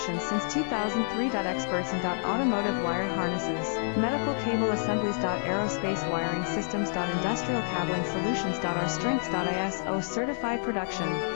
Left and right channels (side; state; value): right; silent; digital silence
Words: since 2003. Experts in automotive wire harnesses, medical cable assemblies. Aerospace wiring systems. Industrial cabling solutions. Our strengths. ISO certified production,